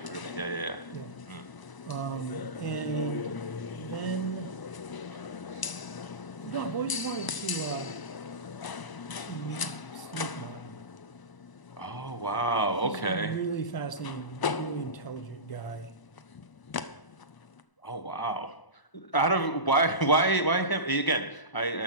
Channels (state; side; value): late; right; 1.0 ms